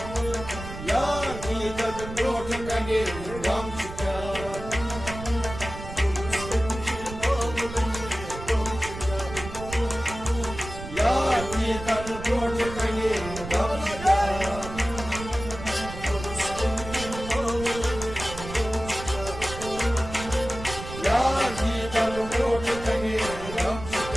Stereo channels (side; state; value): right; noise; rumble, 10 dB below the sound